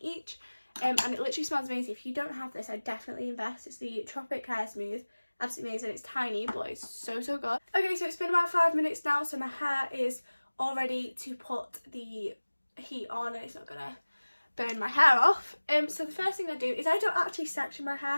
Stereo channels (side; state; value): both; inverted; correlation -1.00